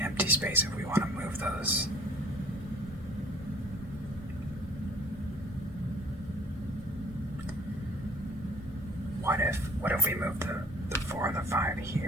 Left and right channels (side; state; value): both; normal; correlation 0.51